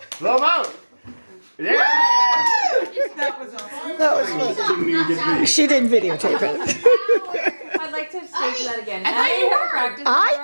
Blow 'em out. Yeah! That was fun. Didn't even get these. She didn't videotape it. I'd like to stage that again. I thought you were. Practice. I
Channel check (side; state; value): both; inverted; correlation -1.00